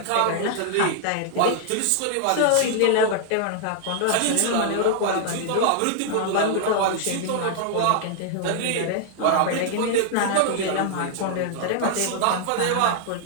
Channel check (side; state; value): both; different; correlation -0.01